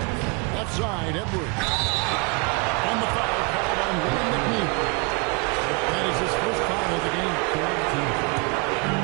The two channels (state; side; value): quieter; left; 30.8 dB